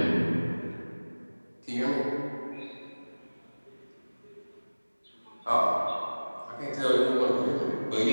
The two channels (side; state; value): both; inverted; correlation -1.00